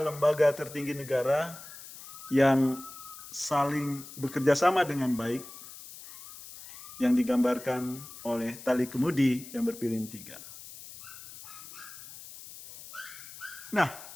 lembaga tertinggi negara yang saling bekerja sama dengan baik, yang digambarkan oleh tali kemudi yang berpilin 3. Nah,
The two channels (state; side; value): noise; left; hiss, 15 dB below the sound